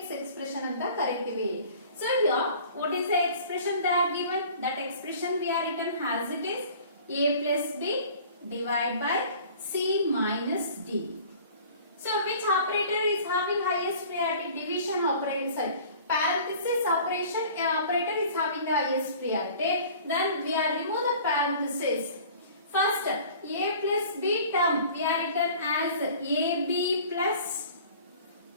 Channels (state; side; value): inverted; both; correlation -0.47